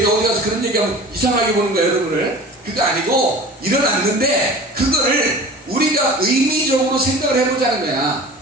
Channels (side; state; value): both; normal; correlation 0.39